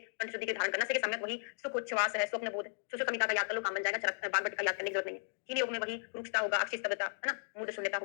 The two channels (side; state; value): right; silent; digital silence